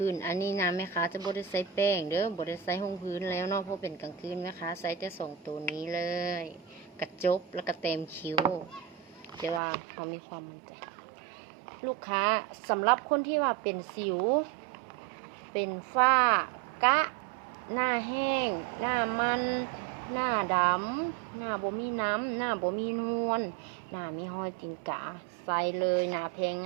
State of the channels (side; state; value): left; drops out; at 9.6 s